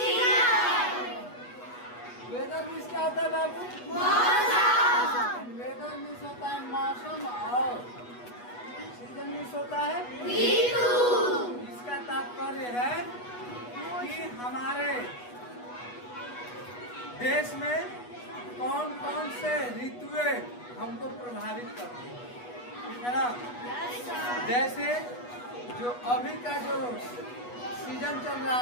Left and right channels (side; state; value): right; late; 8.2 ms